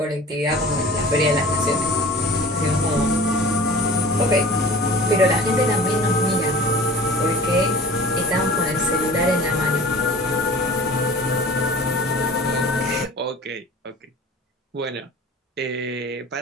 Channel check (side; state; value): both; normal; correlation 0.42